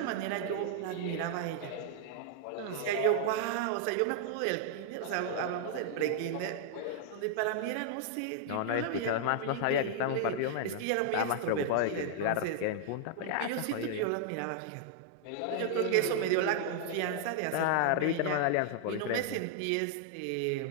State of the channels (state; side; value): different; both; correlation -0.01